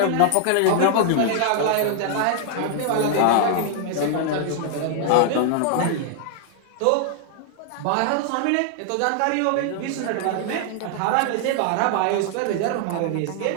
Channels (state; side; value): different; both; correlation 0.00